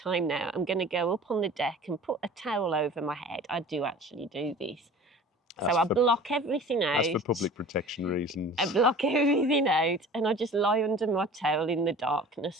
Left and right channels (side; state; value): both; normal; correlation 0.43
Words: now. I'm going to go up on the deck and put a towel over my head. I do actually do this. So I block everything out. That's for public protection reasons. I block everything out and I just lie under my towel in the